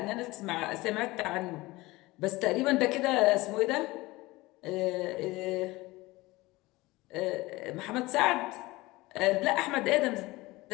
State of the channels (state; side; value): quieter; right; 20.6 dB